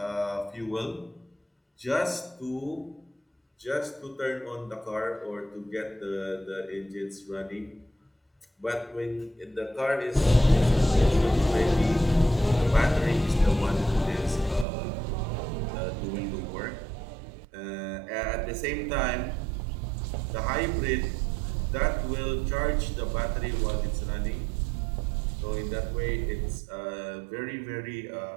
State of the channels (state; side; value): drops out; left; at 14.7 s